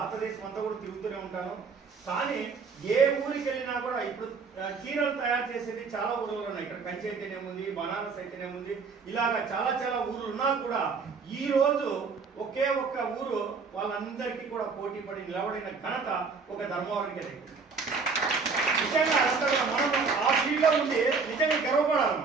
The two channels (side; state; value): left; quieter; 4.9 dB